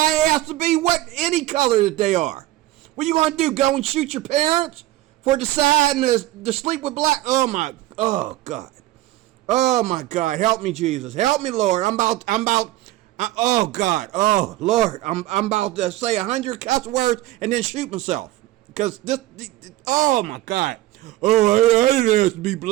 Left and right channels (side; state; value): left; quieter; 16.0 dB